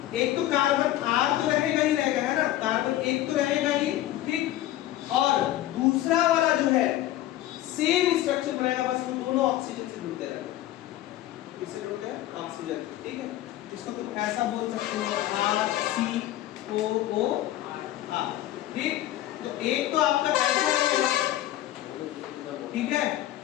एक तो कार्बन R तो रहेगा ही रहेगा, है ना, कार्बन एक तो रहेगा ही, ठीक, और दूसरा वाला जो है सेम स्ट्रक्चर बनाएगा, बस वो दोनों ऑक्सीजन से जुड़ते रहेंगे। किससे जुड़ते हैं? ऑक्सीजन। ठीक है, इसको तुम ऐसा बोल सकते हो RCOO R। ठीक, तो एक तो आपका ऐसा रहेगा, ठीक है,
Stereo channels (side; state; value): right; quieter; 14.1 dB